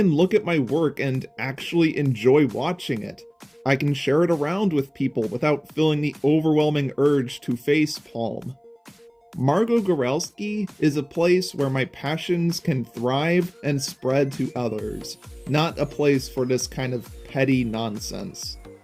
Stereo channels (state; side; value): identical; both; correlation 1.00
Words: look at my work and actually enjoy watching it. I can share it around with people without feeling the overwhelming urge to facepalm. Margo Goralski is a place where my passions can thrive and spread to others, not a place for this kind of petty nonsense.